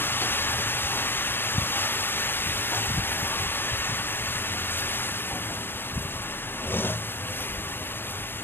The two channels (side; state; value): right; late; 0.10 ms